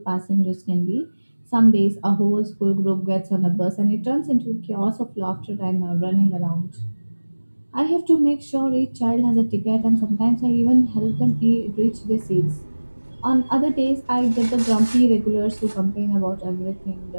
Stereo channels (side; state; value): both; inverted; correlation -1.00